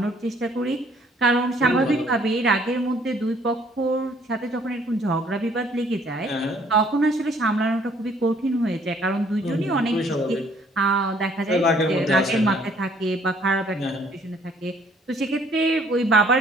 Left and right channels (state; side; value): normal; both; correlation 0.61